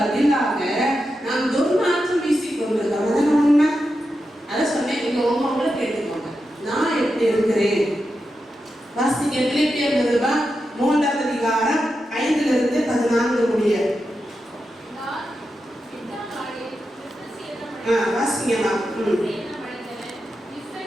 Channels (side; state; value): both; normal; correlation 0.88